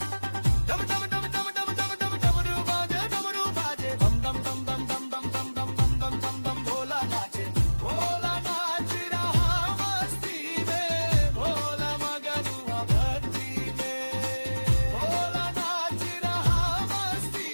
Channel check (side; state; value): both; inverted; correlation -1.00